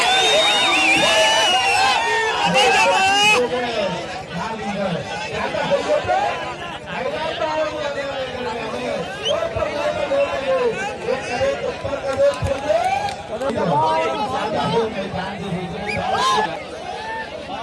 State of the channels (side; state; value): both; identical; correlation 1.00